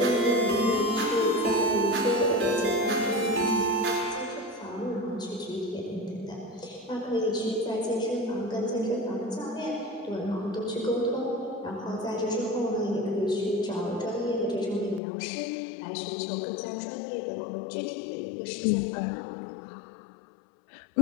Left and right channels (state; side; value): drops out; right; at 15.0 s